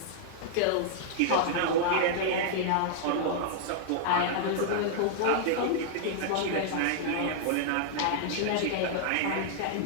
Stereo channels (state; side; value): different; both; correlation -0.01